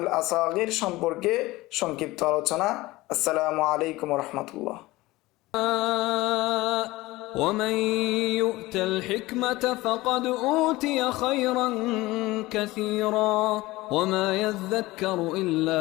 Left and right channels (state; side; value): quieter; right; 19.6 dB